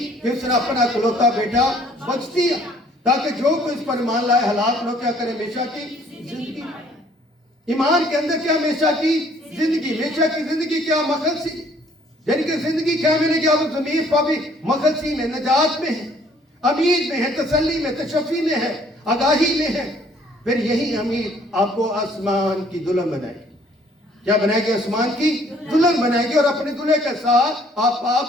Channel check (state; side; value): normal; both; correlation 0.60